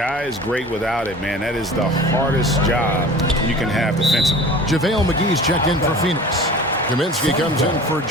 is great without it, man, that is the hardest job you can have defensively. JaVale McGee's checked in for Phoenix. Kaminsky comes in for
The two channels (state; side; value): normal; both; correlation 0.41